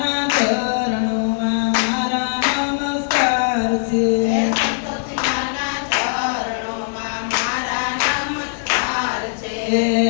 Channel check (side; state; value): right; silent; digital silence